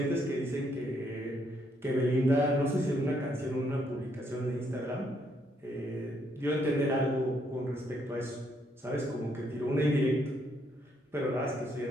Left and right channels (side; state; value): both; normal; correlation 0.73